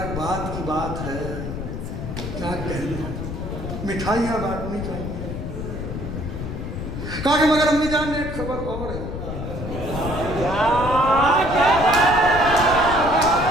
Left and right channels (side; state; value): left; noise; rumble, 6 dB below the sound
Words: بات کی بات ہے، کیا کہنے، مٹھائیاں بانٹنی چاہیے۔ کہا کہ مگر امی جان ایک خبر اور ہے۔